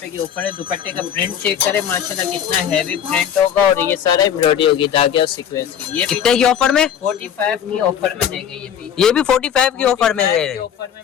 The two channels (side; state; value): right; quieter; 8.9 dB